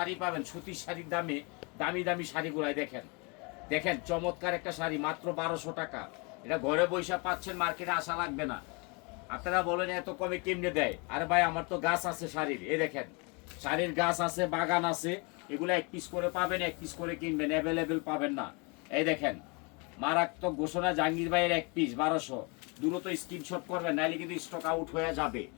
পাবেন সুতির শাড়ির দামে, দামি দামি শাড়িগুলাই দেখেন। দেখেন চমৎকার একটা শাড়ি মাত্র 1200 টাকা। এটা ঘরে বৈশা পাচ্ছেন, মার্কেটে আসা লাগবে না। আপনারা বলেন এত কমে কেমনে দেয়? আরে ভাই আমার তো গাছ আছে শাড়ির। এই দেখেন শাড়ির গাছ আছে, বাগান আছে। এগুলো 1 পিস করে পাবেন, 1 পিস করে কিনবেন, অ্যাভেলেবেল পাবেন না। এই দেখেন মারাত্মক ঘোষণা, জাহাঙ্গীর ভাইয়ের 1 পিস 1200। দ্রুত স্ক্রিনশট করবেন, নাইলে কিন্তু স্টক আউট হয়ে যাবে।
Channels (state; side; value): quieter; right; 31.4 dB